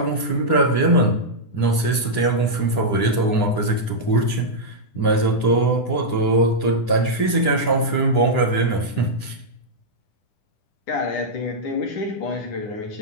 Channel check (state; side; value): late; right; 10 ms